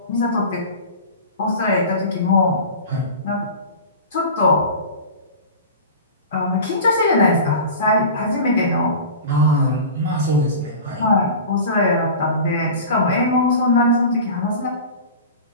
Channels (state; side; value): inverted; both; correlation -0.34